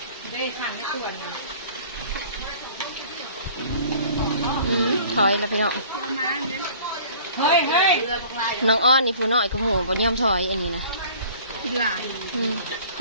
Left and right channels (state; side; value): inverted; both; correlation -0.49